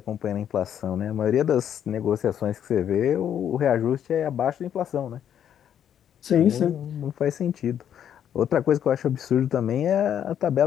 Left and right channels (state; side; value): quieter; right; 9.5 dB